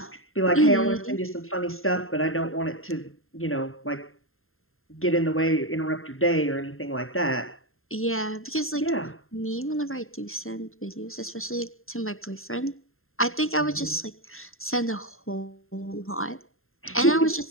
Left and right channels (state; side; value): late; right; 0.61 ms